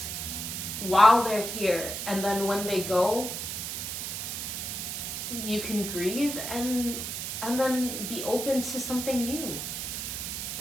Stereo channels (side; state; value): right; noise; hiss, 4 dB below the sound